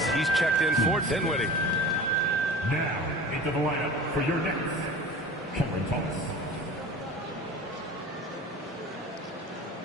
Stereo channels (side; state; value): both; normal; correlation 0.38